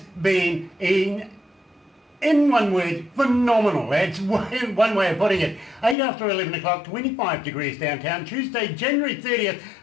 been in one word, phenomenal. That's one way of putting it. 8 after 11 o'clock, 25 degrees downtown, Tuesday, January 30th.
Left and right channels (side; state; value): right; drops out; at 6.0 s